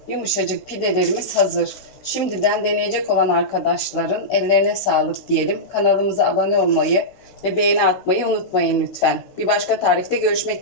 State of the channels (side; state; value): right; late; 16 ms